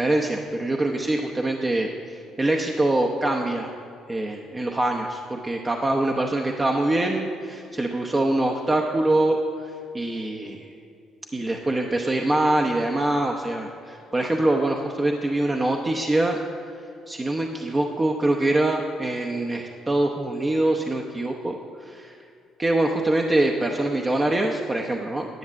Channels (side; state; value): both; normal; correlation 0.91